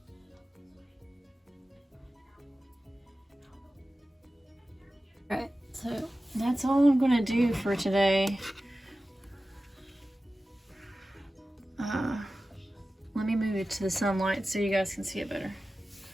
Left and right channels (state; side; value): normal; both; correlation 0.95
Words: Alright, so that's all I'm gonna do for today. Let me move it to the sunlight so you guys can see it better.